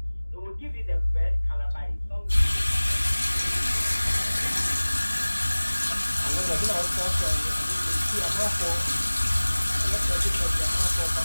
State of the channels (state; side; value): inverted; both; correlation -1.00